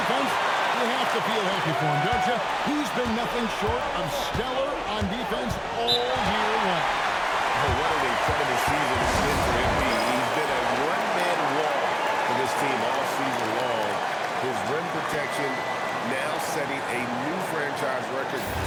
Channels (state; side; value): identical; both; correlation 1.00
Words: you have to feel happy for him, don't you? He's been nothing short of stellar on defense all year long. Oh, what an incredible season it's been for MP. He's been a one-man wall for this team all season long. His rim protection now setting a new franchise record